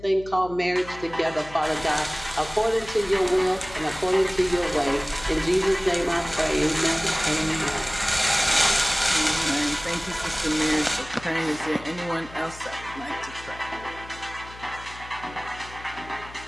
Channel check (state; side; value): noise; left; hum, 17 dB below the sound